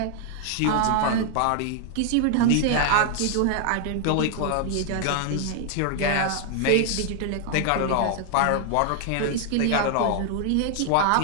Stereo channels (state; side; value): different; both; correlation 0.00